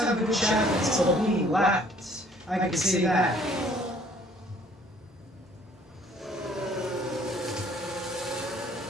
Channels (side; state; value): both; normal; correlation 0.58